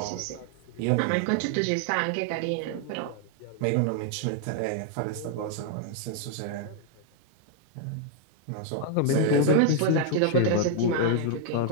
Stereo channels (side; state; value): both; different; correlation 0.00